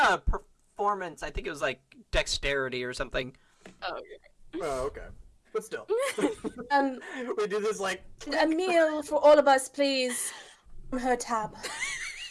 a performance. I think it was like dexterity or something. Oh, Oh, okay. But still. Um, We do this like. Emil, for all of us, please. On her tab.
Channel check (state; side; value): identical; both; correlation 1.00